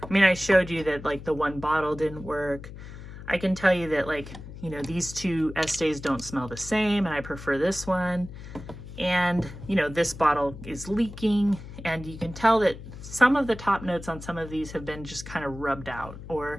I mean, I showed you that like the one bottle didn't work. I can tell you that like, you know, these two Estes don't smell the same and I prefer this one. And, you know, this bottle is leaking, and you can tell that some of the top notes on some of these have been just kind of rubbed out,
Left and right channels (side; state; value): left; noise; hum, 13 dB below the sound